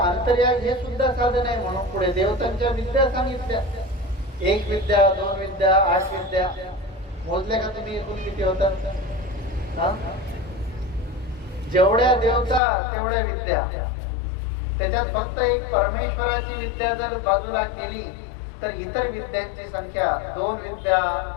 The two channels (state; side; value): drops out; right; at 12.6 s